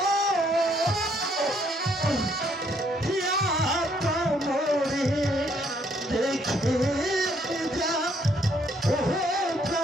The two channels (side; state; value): both; normal; correlation 0.68